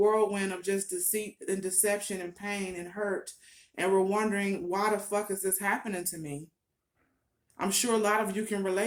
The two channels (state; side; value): identical; both; correlation 1.00